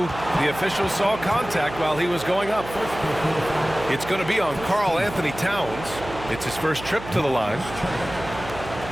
The official saw contact while he was going up. It's going to be on Karl Anthony Towns. It's his first trip to the line.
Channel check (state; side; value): noise; right; hum, 12 dB below the sound